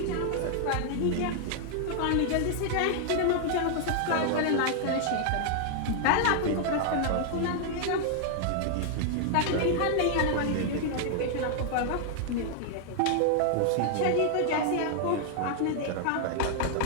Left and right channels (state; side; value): different; both; correlation 0.00